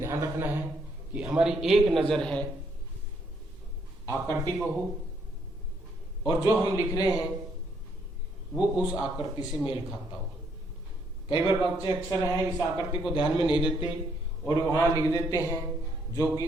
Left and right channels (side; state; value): both; normal; correlation 0.72